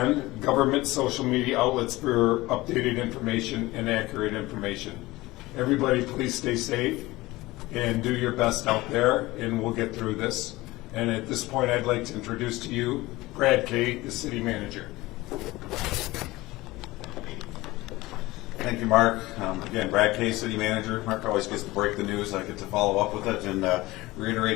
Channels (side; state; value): right; quieter; 19.6 dB